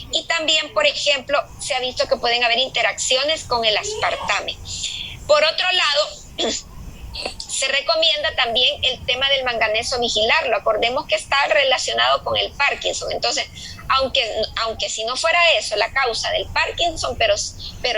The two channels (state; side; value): identical; both; correlation 1.00